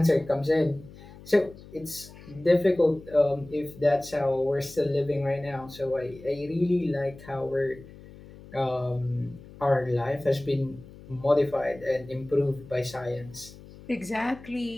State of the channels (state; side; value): noise; left; hum, 19 dB below the sound